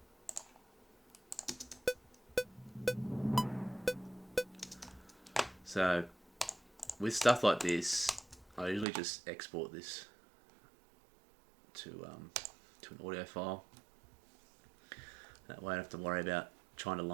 So with stuff like this, I usually just export this to an audio file. That way I don't have to worry about trying to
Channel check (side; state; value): left; drops out; at 8.8 s